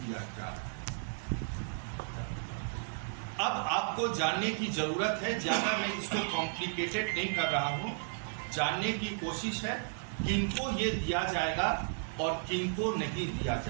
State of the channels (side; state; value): left; silent; digital silence